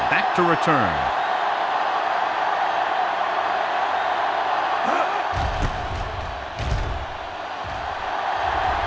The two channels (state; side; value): identical; both; correlation 1.00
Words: back to return.